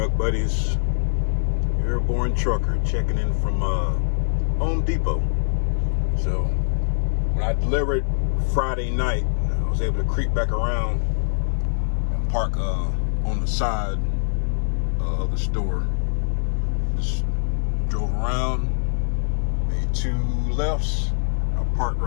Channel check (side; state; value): right; silent; digital silence